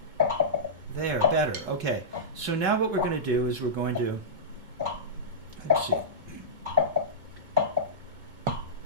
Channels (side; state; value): left; late; 2.2 ms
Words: There, better. Okay, so now what we're going to do is we're going to, let's see.